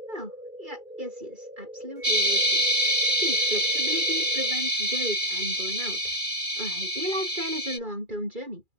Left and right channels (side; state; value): left; late; 2.4 ms